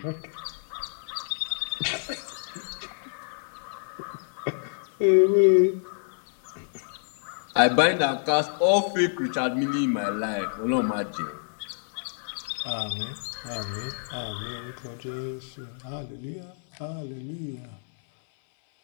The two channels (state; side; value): silent; right; 57 dB below the other